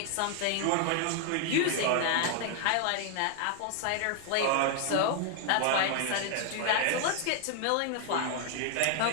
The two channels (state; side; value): different; both; correlation 0.00